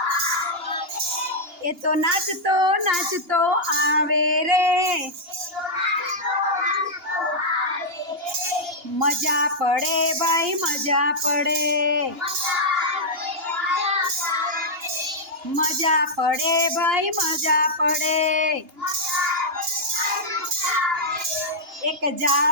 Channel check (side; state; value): left; late; 2.9 ms